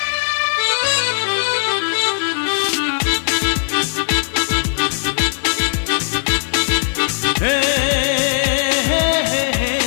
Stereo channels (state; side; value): silent; right; 63 dB below the other